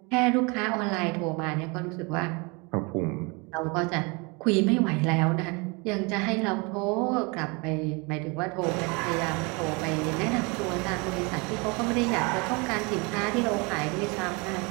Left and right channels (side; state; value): left; quieter; 29.2 dB